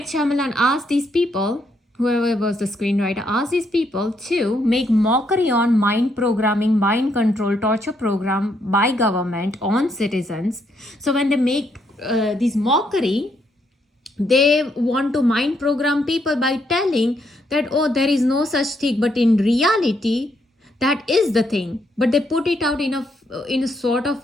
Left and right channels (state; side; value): normal; both; correlation 0.75